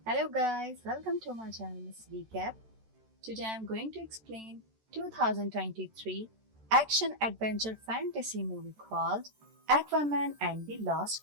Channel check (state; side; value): late; left; 13 ms